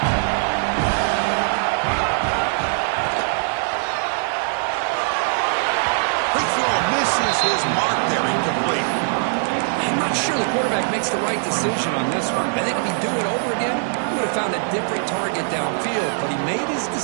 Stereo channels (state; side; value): silent; left; digital silence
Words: His mark there, incomplete. I'm not sure the quarterback makes the right decision on this one. I think if he'd do it over again, he would have found a different target downfield, but he made his